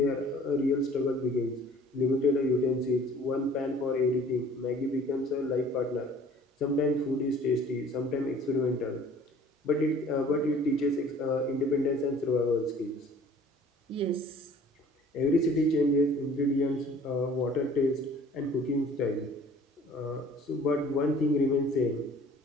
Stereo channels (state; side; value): normal; both; correlation 0.51